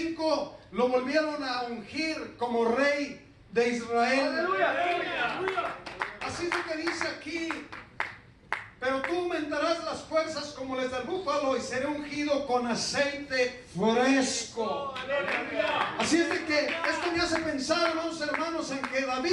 lo volvieron a ungir como rey de Israel. ¡Aleluya! Así es lo que dice aquí: pero tú aumentarás las fuerzas como las del búfalo, y seré ungido con aceite fresco. Así es de que esto me hace pensar, hermanos, en que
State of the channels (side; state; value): both; identical; correlation 1.00